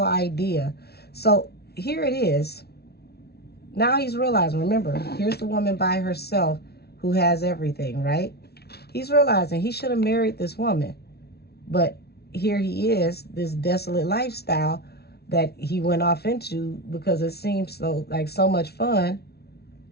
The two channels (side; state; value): right; late; 0.46 ms